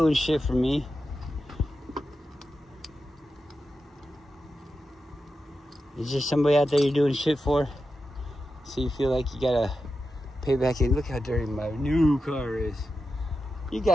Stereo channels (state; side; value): normal; both; correlation 0.90